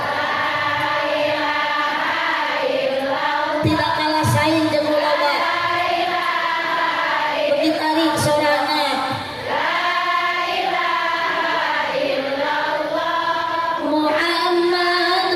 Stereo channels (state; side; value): identical; both; correlation 1.00